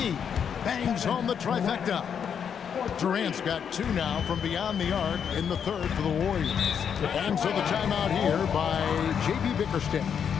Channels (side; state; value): right; quieter; 7.6 dB